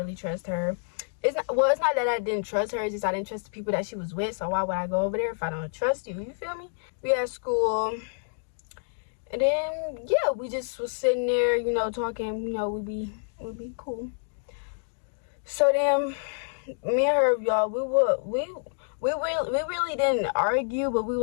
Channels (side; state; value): right; silent; digital silence